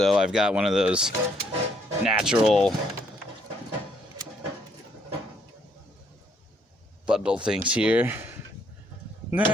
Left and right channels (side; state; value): both; normal; correlation 0.69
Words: I've got one of those natural bundle things here.